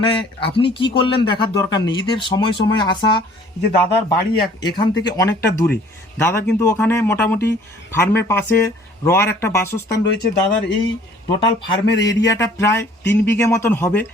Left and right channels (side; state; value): both; normal; correlation 0.55